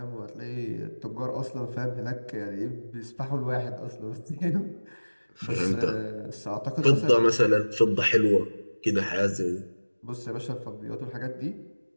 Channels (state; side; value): inverted; both; correlation -1.00